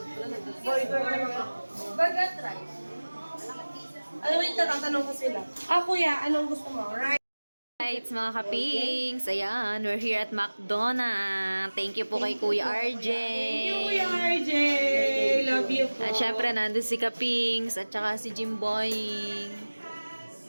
Burger try. Alam mo yung tatanong ko sila. Ah, kuya, anong gusto mo? Right? Right, mga kapings. Ayan, we're here at McDonald's. Thank you po kay Kuya RJ. Thank you, Kuya RJ. Love you po. At syempre, nandun si Kapings at saka si Jimboy.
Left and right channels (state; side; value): inverted; both; correlation -1.00